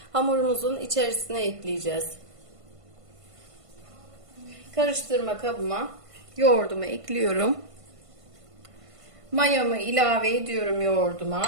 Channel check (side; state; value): left; late; 1.5 ms